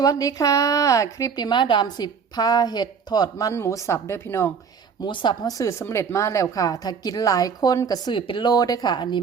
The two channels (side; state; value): left; quieter; 6.3 dB